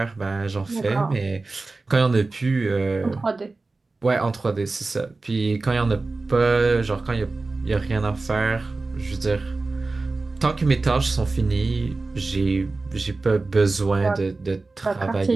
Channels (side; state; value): left; quieter; 3.5 dB